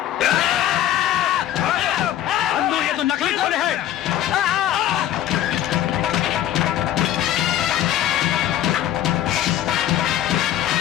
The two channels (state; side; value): quieter; right; 11.9 dB